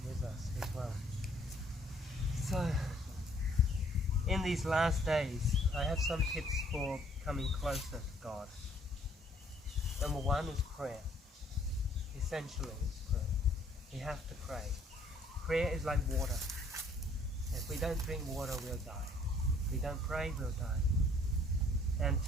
with us as well. So in these last days, I have some tips for coming closer to God. Number one is prayer. Essentially, it's prayer. We have to pray. Prayer is like water. If we don't drink water, we'll die. If we don't pray, we'll die. And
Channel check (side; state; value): both; normal; correlation 0.61